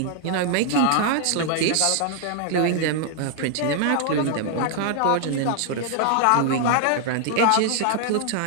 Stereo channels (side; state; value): both; different; correlation 0.00